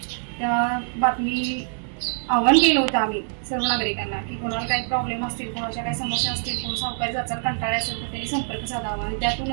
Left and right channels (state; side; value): silent; left; 62 dB below the other